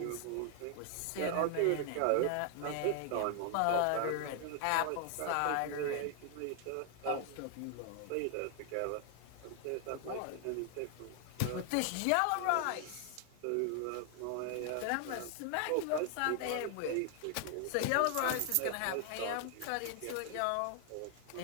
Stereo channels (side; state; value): both; different; correlation 0.00